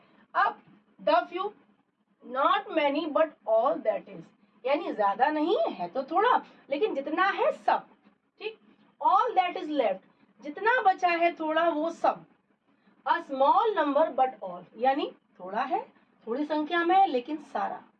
अब the few, not many but all that is, यानी ज्यादा नहीं है तो थोड़ा, लेकिन जितना है सब। ठीक, ऑल दैट इज लेफ्ट, जितना बचा है थोड़ा, वो सब। A small number but all, यानी थोड़ा है, थोड़ी संख्या में है, लेकिन सारा।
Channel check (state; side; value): identical; both; correlation 1.00